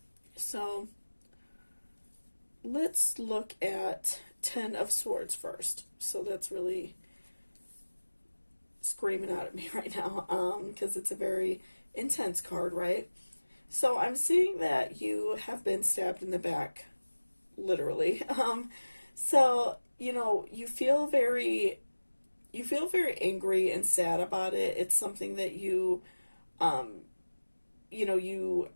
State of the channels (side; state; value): both; inverted; correlation -1.00